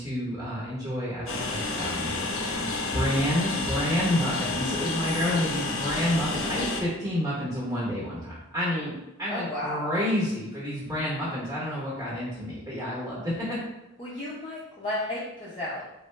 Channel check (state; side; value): normal; both; correlation 0.49